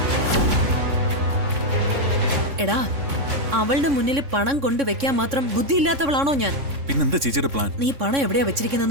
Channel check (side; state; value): left; late; 3.6 ms